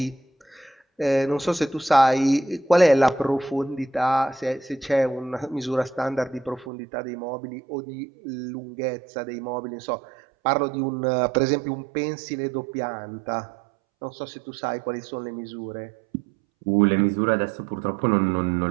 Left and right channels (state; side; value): drops out; left; at 6.7 s